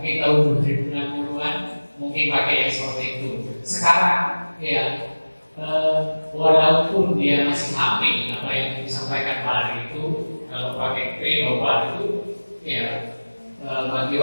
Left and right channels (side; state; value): both; inverted; correlation -1.00